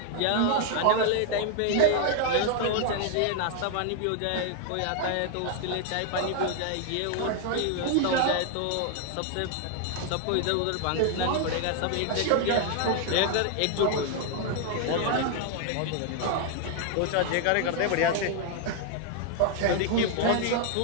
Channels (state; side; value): different; both; correlation 0.00